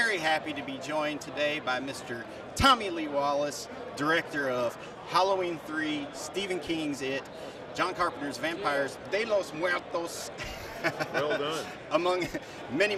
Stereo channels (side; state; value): both; identical; correlation 1.00